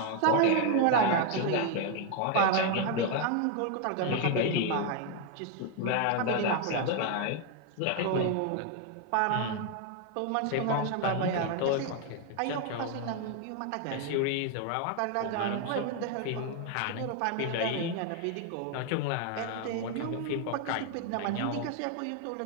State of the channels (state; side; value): different; both; correlation 0.01